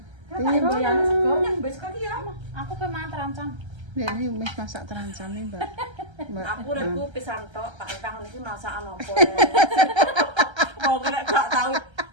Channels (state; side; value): late; left; 1.3 ms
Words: Tiro yang sego yang wis kali ya. Aku pe mangan terancam. Ini wis masak terancam nih, Mbak. Mbak. Aku reku pisan tok, Pak Itang iki masakan apa. Mau kena gak tahu